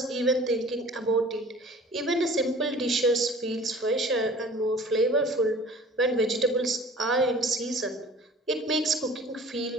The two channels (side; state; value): both; normal; correlation 0.46